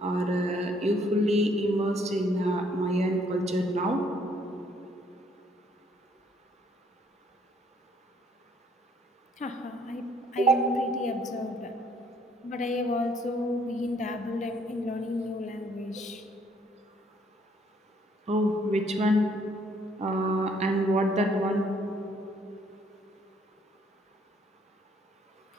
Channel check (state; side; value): normal; both; correlation 0.65